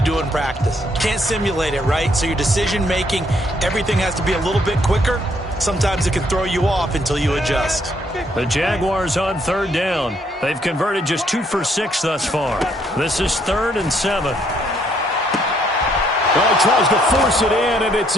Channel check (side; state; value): both; normal; correlation 0.69